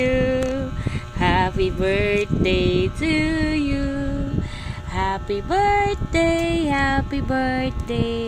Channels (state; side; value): identical; both; correlation 1.00